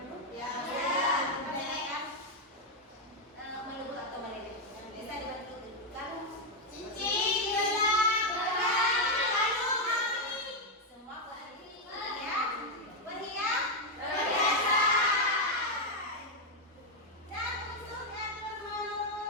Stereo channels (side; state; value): both; normal; correlation 0.02